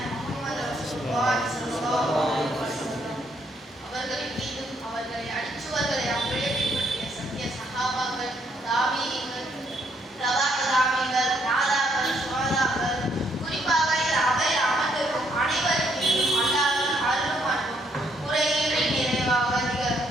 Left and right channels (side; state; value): both; normal; correlation 0.71